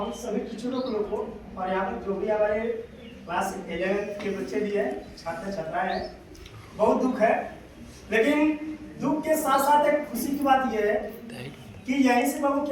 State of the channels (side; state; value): both; identical; correlation 1.00